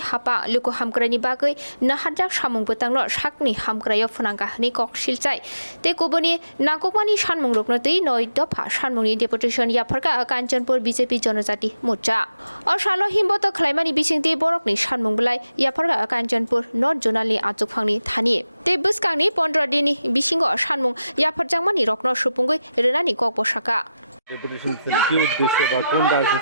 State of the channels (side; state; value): both; inverted; correlation -0.91